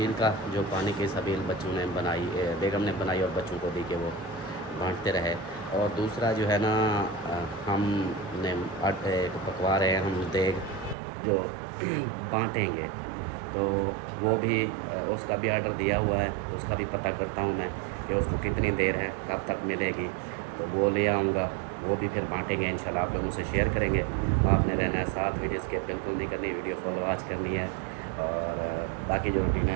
का जो पानी की सबील बच्चों ने बनाई, बेगम ने बनाई और बच्चों को दी कि वो बांटते रहे। और दूसरा जो है ना हमने आटे को पकवा रहे हैं हम देग जो बांटेंगे, तो वो भी उसका भी आर्डर दिया हुआ है, उसका भी पता करता हूँ मैं कि उसको कितनी देर है, कब तक मिलेगी, तो वो ले आऊँगा, वो भी फिर बांटेंगे इंशाल्लाह, आप लोगों से शेयर करेंगे। आपने रहना है साथ, वीडियो स्किप बिल्कुल नहीं करनी, वीडियो फॉलो आज करनी है। और बाकी जो रूटीन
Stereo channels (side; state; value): left; drops out; at 11.0 s